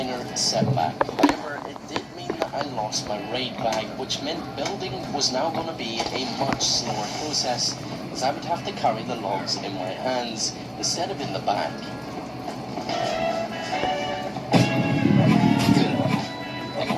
setback. However, it did mean that I lost my raid bag, which meant building was now going to be a much slower process, as I would have to carry the logs in my hands instead of in the back. I think I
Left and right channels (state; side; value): identical; both; correlation 1.00